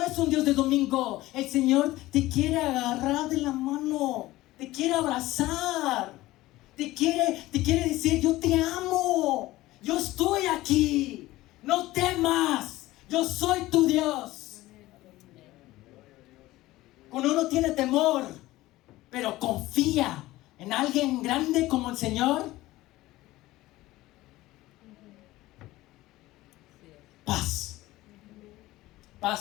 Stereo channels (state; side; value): quieter; right; 17.5 dB